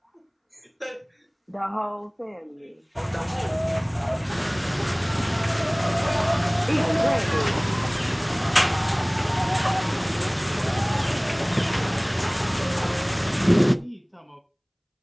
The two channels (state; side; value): identical; both; correlation 1.00